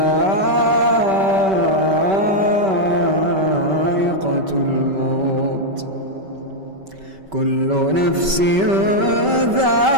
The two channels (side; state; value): left; late; 5.2 ms